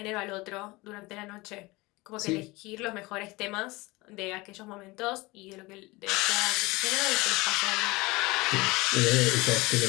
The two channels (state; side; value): quieter; right; 22.6 dB